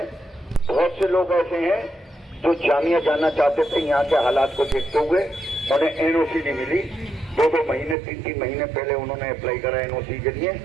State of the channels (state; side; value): drops out; left; at 8.0 s